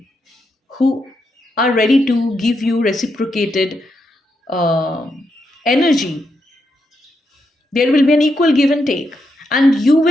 who are ready to give you reciprocated uh, energy. There will be an equal give and take, and you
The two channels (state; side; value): normal; both; correlation 0.82